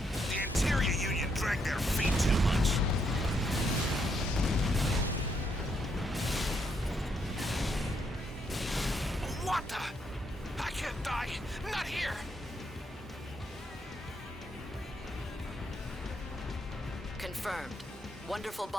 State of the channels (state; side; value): normal; both; correlation 0.76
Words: The Interior Union dragged their feet too much. What the? I can't die. Not here. Confirmed. Wonderful